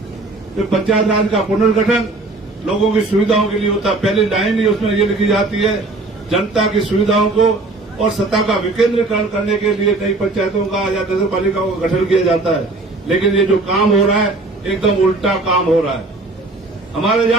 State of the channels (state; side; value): quieter; left; 3.1 dB